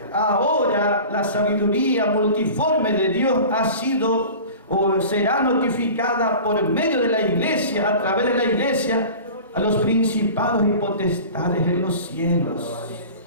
ahora la sabiduría multiforme de Dios ha sido o será notificada por medio de la iglesia, a través de la iglesia, a los principados y potestades en los cielos.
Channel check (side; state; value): both; inverted; correlation -0.38